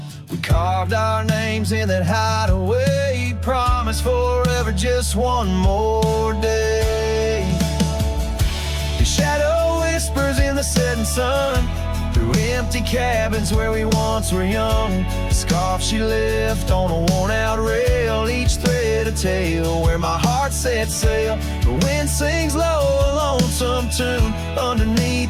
We carved our names in that hideaway, promised forever just one more day. The shadow whispers in the setting sun, through empty cabins where we once were young. The scarf she left on a worn-out rail, each thread a tale where my heart set sail. The wind sings low a lonesome tune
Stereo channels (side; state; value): both; identical; correlation 1.00